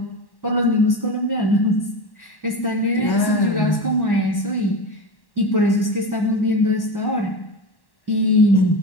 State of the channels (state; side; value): late; right; 1.1 ms